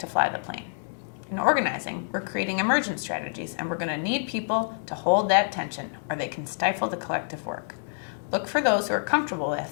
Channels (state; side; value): silent; right; digital silence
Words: fly the plane. In organizing, we're creating emergent strategies, and we're going to need people to hold that tension or they can stifle the collective work. Look for those who are comfortable